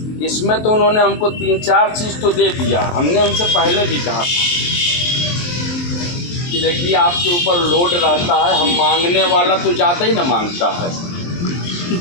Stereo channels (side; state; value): right; late; 23 ms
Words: इसमें तो उन्होंने हमको 3-4 चीज़ तो दे दिया। हमने उनसे पहले भी कहा था कि देखिए आपके ऊपर लोड रहता है, हम मांगने वाला तो ज़्यादा ही ना मांगता है,